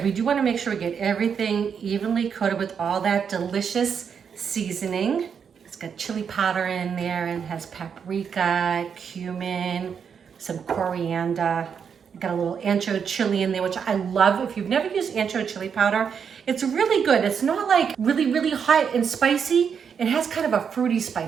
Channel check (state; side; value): quieter; left; 7.0 dB